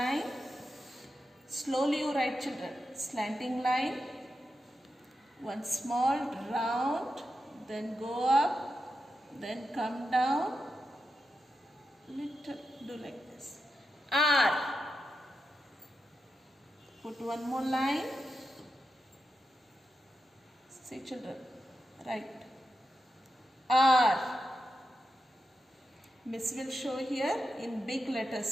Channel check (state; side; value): normal; both; correlation 0.88